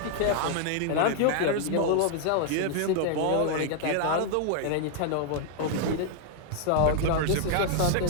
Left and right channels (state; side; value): different; both; correlation 0.00